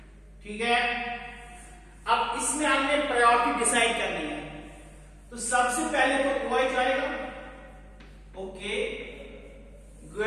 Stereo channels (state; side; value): identical; both; correlation 1.00